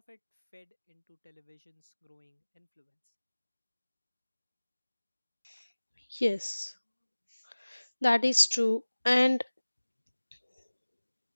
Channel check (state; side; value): inverted; both; correlation -1.00